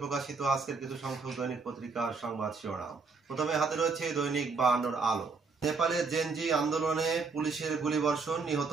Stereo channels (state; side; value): quieter; left; 4.5 dB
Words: প্রকাশিত আজকের কিছু সংখ্যক দৈনিক পত্রিকার সংবাদ শিরোনাম। প্রথমে হাতে রয়েছে দৈনিক 52 আলো। নেপালের জেনজি আন্দোলনে পুলিশের গুলিবর্ষণ, নিহত